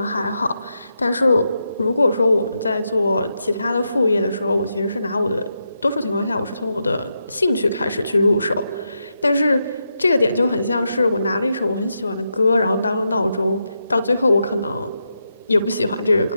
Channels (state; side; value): inverted; both; correlation -0.84